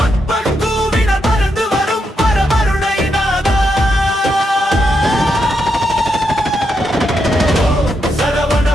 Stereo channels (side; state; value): both; normal; correlation 0.82